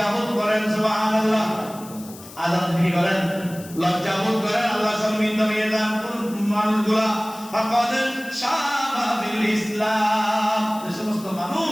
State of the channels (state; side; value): noise; left; hiss, 18 dB below the sound